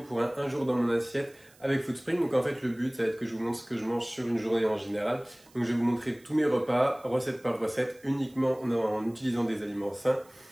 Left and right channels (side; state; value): right; noise; hiss, 28 dB below the sound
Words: pour un jour dans mon assiette avec Foodspring. Donc en fait le but ça va être que je vous montre ce que je mange sur une journée en général. Donc je vais vous montrer tous mes repas, recette par recette, uniquement en utilisant des aliments sains